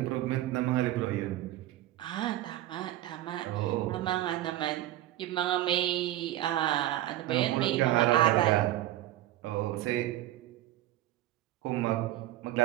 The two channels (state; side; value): quieter; left; 14.6 dB